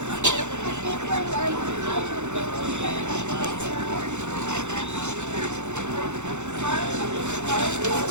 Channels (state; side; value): late; left; 0.83 ms